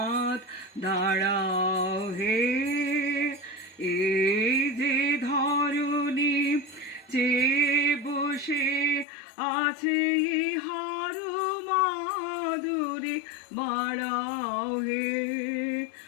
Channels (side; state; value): right; drops out; at 9.1 s